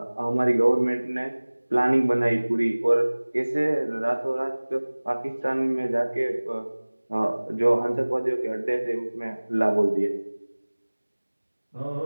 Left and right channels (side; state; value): both; inverted; correlation -1.00